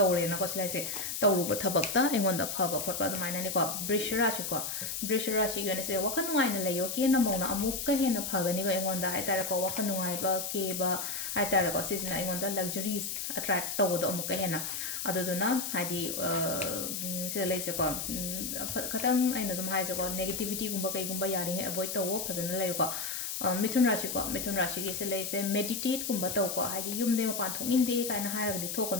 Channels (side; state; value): left; noise; hiss, 4 dB below the sound